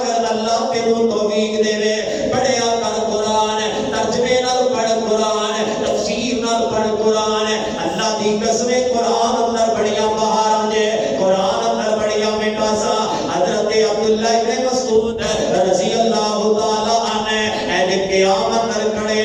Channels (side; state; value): both; identical; correlation 1.00